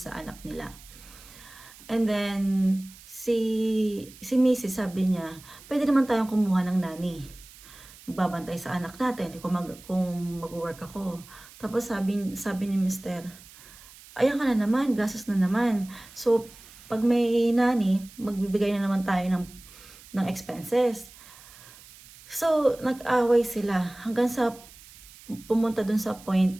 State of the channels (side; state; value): right; noise; hiss, 21 dB below the sound